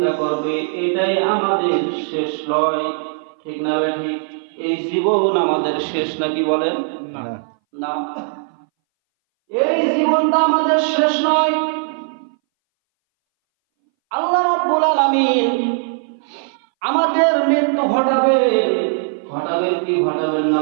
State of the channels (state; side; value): silent; left; 62 dB below the other